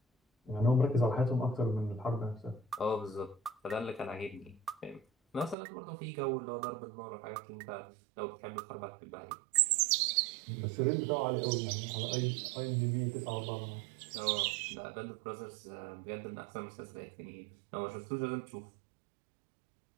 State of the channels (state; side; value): drops out; left; at 5.6 s